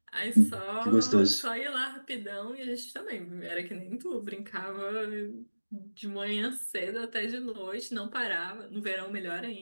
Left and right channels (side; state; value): both; inverted; correlation -1.00